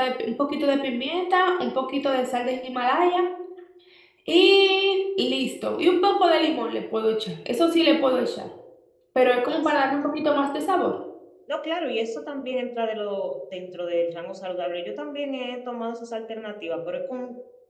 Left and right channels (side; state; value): both; identical; correlation 1.00